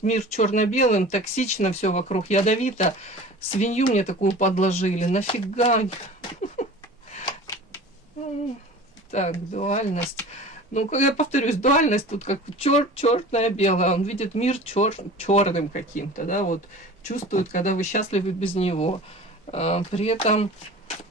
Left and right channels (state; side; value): normal; both; correlation 0.39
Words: мир черно-белым, токсично, все вокруг ядовито. Свинью мне такую подложили. Нафига? Так, дуальность. Ну, я повторюсь, дуальность тут как черное белое. Он видит мир черным каким-то, да, вот чувствует, когда вы счастливы без него. При этом